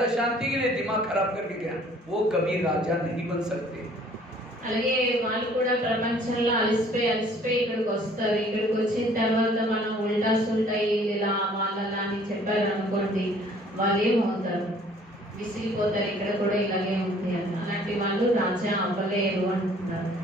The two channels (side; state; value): both; normal; correlation 0.56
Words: शांति के लिए, दिमाग खराब करके गया, वो कभी राजा नहीं बन सकते। అలాగే వాళ్ళు కూడా ప్రపంచంలో అలసిపోయి ఇక్కడికి వస్తారు। ఇక్కడికి వచ్చిన తర్వాత మనం ఉల్టా సుల్టా ఇలా వాళ్ళలా అని చెప్పారు అనుకోండి, వాళ్ళు ఏమవుతారు? విసిగిపోతారు, ఇక్కడ కూడా ఇలాగే ఉంది అని। అలాంటి వాళ్ళు రాజా అవ్వలేరు అంటున్నారు।